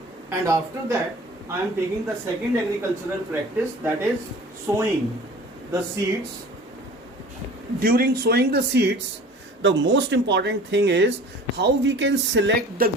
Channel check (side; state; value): both; normal; correlation 0.43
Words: and after that I am taking the second agricultural practice, that is sowing the seeds. During sowing the seeds, the most important thing is how we can select the